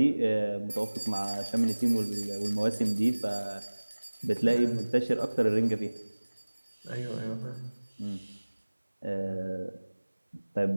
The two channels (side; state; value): both; inverted; correlation -1.00